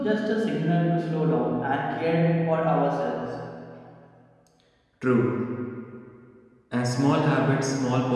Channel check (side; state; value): both; identical; correlation 1.00